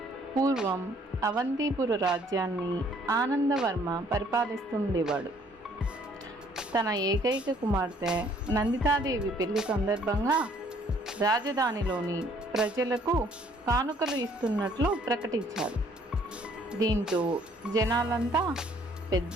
పూర్వం అవంతిపుర రాజ్యాన్ని ఆనందవర్మ పరిపాలిస్తుండేవాడు. తన ఏకైక కుమార్తె నందితాదేవి పెళ్లి సందర్భంగా రాజధానిలోని ప్రజలకు కానుకలు ఇస్తున్నట్లు ప్రకటించారు. దీంతో జనాలంతా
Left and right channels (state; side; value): normal; both; correlation 0.61